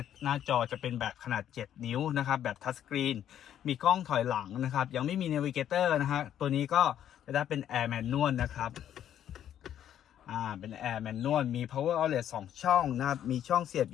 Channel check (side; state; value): right; quieter; 10.5 dB